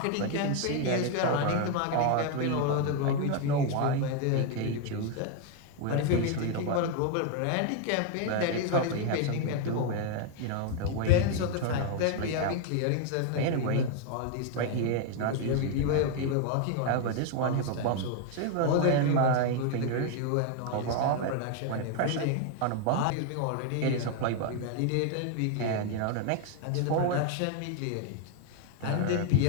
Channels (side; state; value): both; different; correlation 0.00